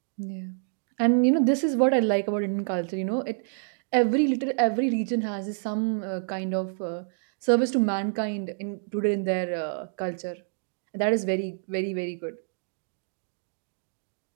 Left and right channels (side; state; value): left; silent; digital silence